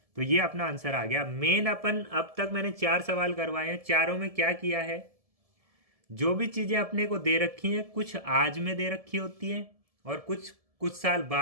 तो ये अपना आंसर आ गया। मेन अपन अब तक मैंने 4 सवाल करवाए हैं, चारों में क्या किया है? जो भी चीजें अपने को दे रखी हैं, कुछ आज में दे रखी होती हैं और कुछ साल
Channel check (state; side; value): late; left; 1.7 ms